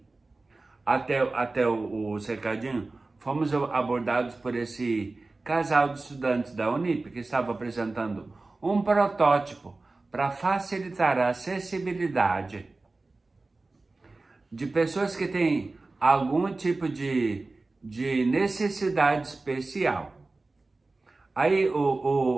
até o cercadinho, fomos abordados por esse casal de estudantes da Unip, que estava apresentando um protótipo para facilitar a acessibilidade de pessoas que têm algum tipo de necessidade especial. Aí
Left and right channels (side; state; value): left; quieter; 3.4 dB